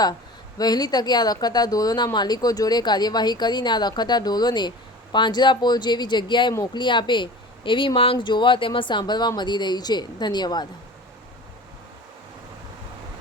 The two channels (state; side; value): normal; both; correlation 0.38